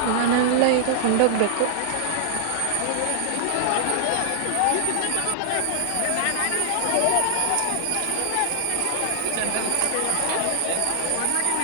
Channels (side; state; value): both; different; correlation -0.01